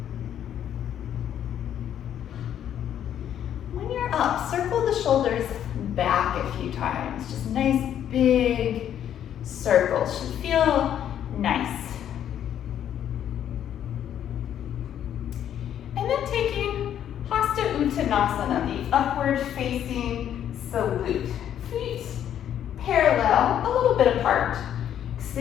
When you're up, circle the shoulders back a few times. Just nice big circles. Should feel nice. And then taking Hasta Uttanasana, the upward facing salute. Feet parallel, a little bit apart.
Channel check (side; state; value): right; quieter; 10.1 dB